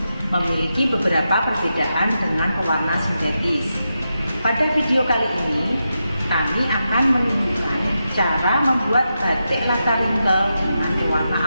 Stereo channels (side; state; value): both; inverted; correlation -0.88